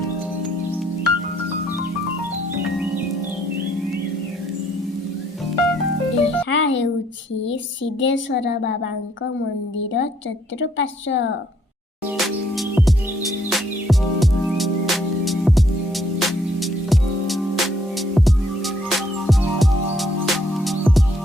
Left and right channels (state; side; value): normal; both; correlation 0.67